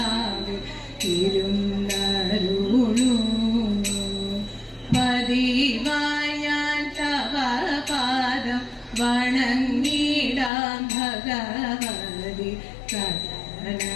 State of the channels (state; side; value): drops out; right; at 10.5 s